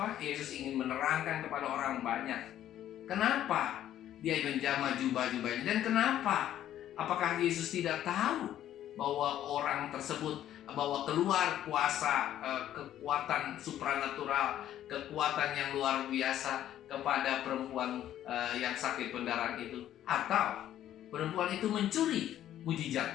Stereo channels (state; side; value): quieter; right; 11.8 dB